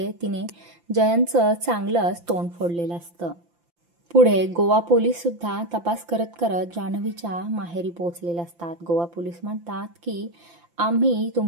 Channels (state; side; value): late; left; 5.8 ms